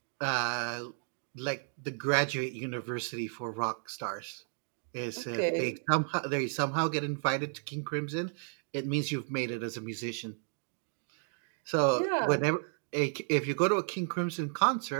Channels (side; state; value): left; silent; 56 dB below the other